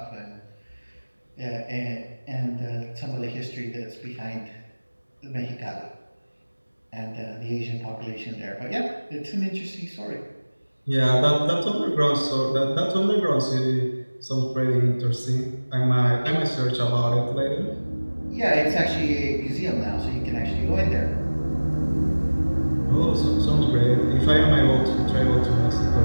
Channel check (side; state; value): both; inverted; correlation -1.00